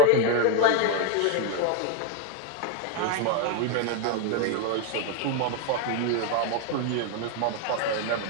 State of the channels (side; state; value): both; different; correlation 0.01